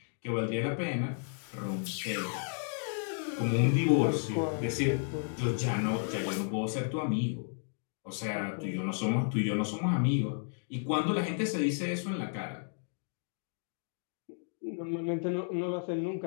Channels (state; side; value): silent; right; 56 dB below the other